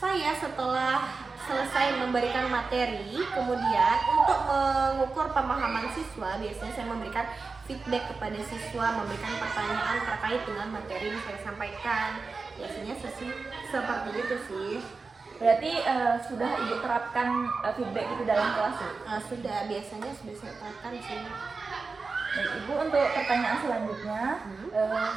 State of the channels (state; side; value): quieter; left; 4.3 dB